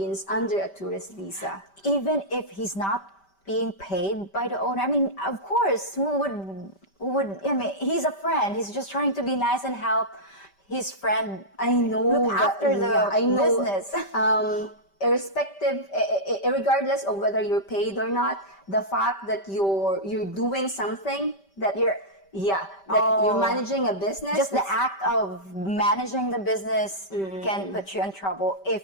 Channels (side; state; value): right; late; 5.1 ms